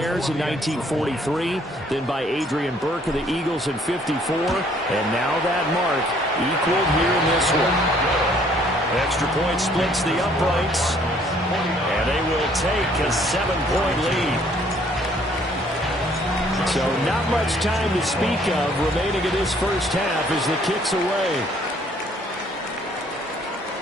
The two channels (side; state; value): both; normal; correlation 0.62